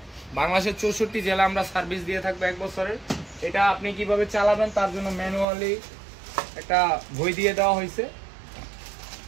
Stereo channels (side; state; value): left; drops out; at 5.5 s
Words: বাংলাদেশের 64 জেলা আমরা সার্ভিস দিয়ে থাকবো 1 বছরের। এটা আপনি কিভাবে চালাবেন তার জন্য ম্যানুয়ালি একটা বই দিয়ে দেওয়া হয়েছে।